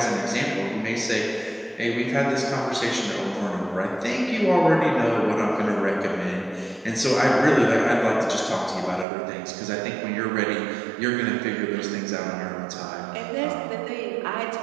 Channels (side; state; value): left; drops out; at 9.1 s